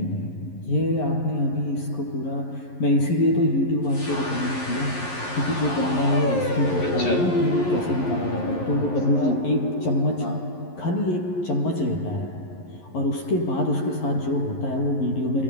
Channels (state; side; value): late; right; 11 ms